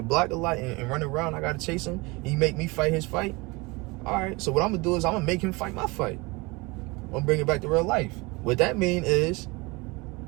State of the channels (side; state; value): left; quieter; 25.2 dB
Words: block a lot and run around. I gotta chase him. He make me fight his fight. All right, so what I'm gonna do is I'm gonna make him fight my fight. I'm gonna bring it back to real life. What that mean is